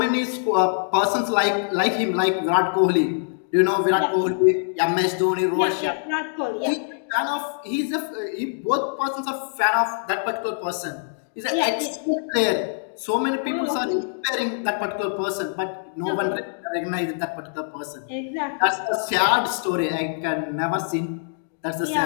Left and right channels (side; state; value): right; silent; digital silence